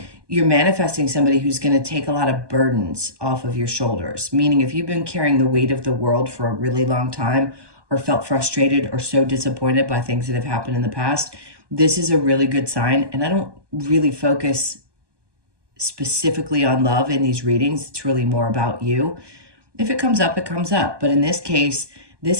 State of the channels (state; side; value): late; left; 1.2 ms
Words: you're manifesting somebody who's going to take a lot of burdens off of your shoulders. Meaning if you've been carrying the weight of the world for a really long time, or felt frustrated or so disappointed by things that have happened in the past, this is a really good sign. And I don't really focus specifically on love in these readings. It's really more about you. If it comes up, it comes up. But in this case,